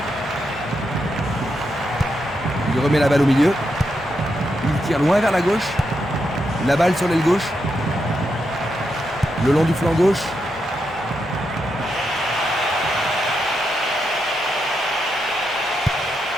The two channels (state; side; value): normal; both; correlation 0.83